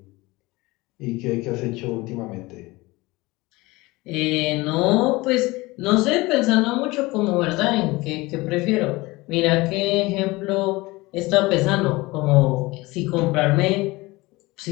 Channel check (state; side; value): quieter; right; 21.7 dB